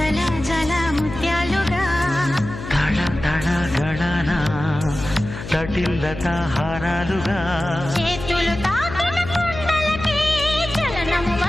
జల ముత్యాలుగా తళ తళ గళన తటిల్లత హారాలుగా చేతులు తాకిన కుండలకే చలనము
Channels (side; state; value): left; noise; hum, 10 dB below the sound